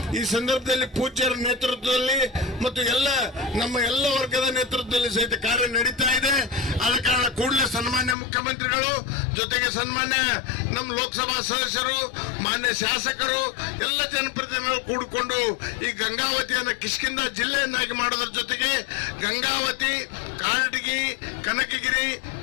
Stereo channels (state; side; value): drops out; right; at 8.2 s